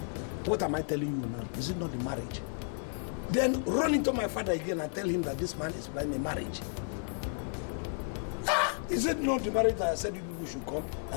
What am I telling you now? Is it not the marriage? Then run into my father again and tell him that this man is planning a marriage. Is it not the marriage that I said you people should come?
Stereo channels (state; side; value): silent; right; 56 dB below the other